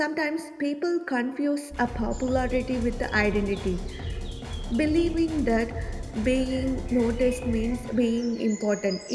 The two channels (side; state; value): both; identical; correlation 1.00